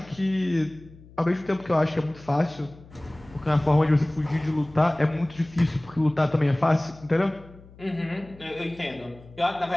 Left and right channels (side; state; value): left; noise; hum, 22 dB below the sound